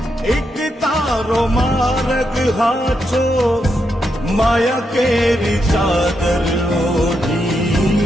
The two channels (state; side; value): normal; both; correlation 0.83